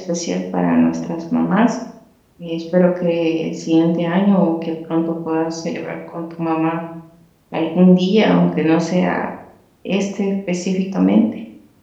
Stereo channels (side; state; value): both; identical; correlation 1.00